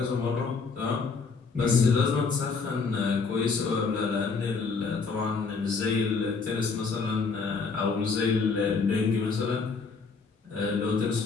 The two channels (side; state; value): right; quieter; 4.8 dB